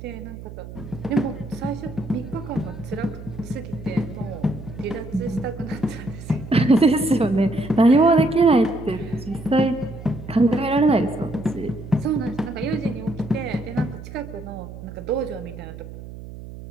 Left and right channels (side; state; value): right; noise; hum, 13 dB below the sound